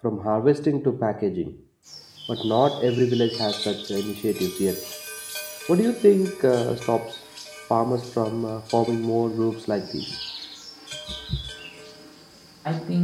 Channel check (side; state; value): both; identical; correlation 1.00